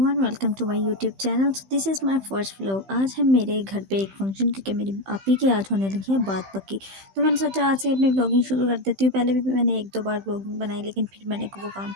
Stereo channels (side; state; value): left; late; 15 ms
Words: welcome to my YouTube channel. So this is my first vlog. आज है मेरे घर पे एक फंक्शन, क्योंकि मेरी आपी की आज होने लगी है बात पक्की। तो मैंने सोचा आज से अपनी व्लॉगिंग शुरू कर देती हूँ। पहले भी मैंने एक दो बार व्लॉगिंग बनाई, लेकिन फिर मैंने वो काम